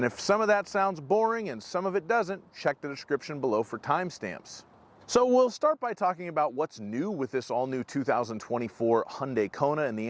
if some of that sounds boring and some of it doesn't, check the description below for timestamps. So we'll start by talking about what's new with this all-new 2024 Hyundai Kona, and the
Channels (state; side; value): identical; both; correlation 1.00